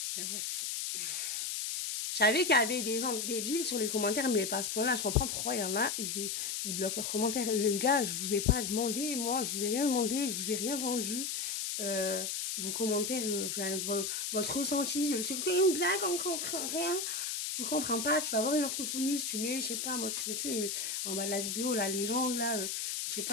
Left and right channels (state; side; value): noise; left; hiss, 2 dB below the sound